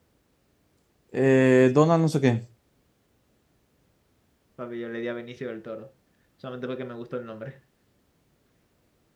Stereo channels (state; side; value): identical; both; correlation 1.00